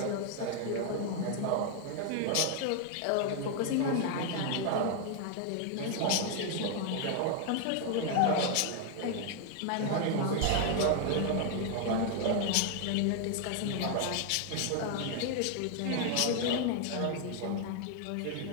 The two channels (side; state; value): both; different; correlation 0.00